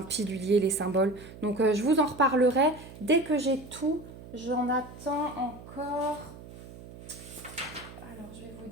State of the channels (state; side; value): noise; right; hum, 16 dB below the sound